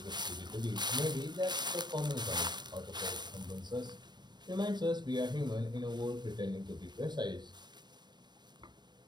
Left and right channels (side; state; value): left; late; 0.21 ms